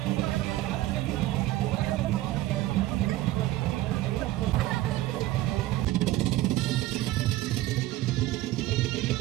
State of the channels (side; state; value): left; quieter; 16.2 dB